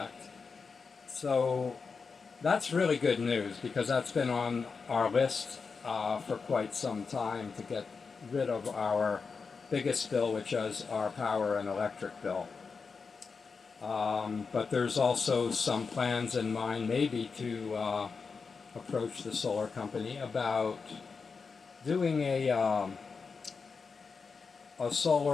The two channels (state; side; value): quieter; right; 5.0 dB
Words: So that's really good news because that's been on our list for quite some time to get rid of our biggest bill, which is our power and electric bill. But there's also some plans in mind maybe to approach the solar company about doing a